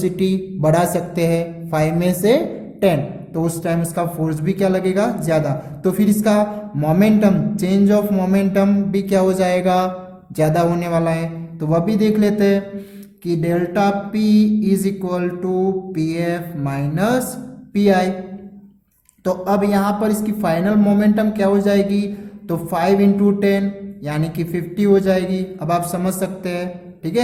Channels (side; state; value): both; identical; correlation 1.00